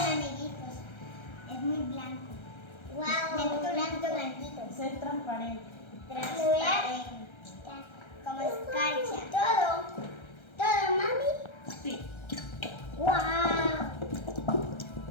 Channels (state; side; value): late; right; 1.3 ms